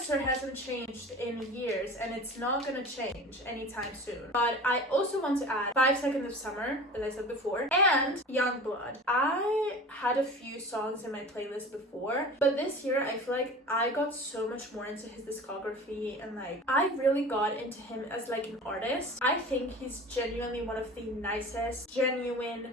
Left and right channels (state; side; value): normal; both; correlation 0.37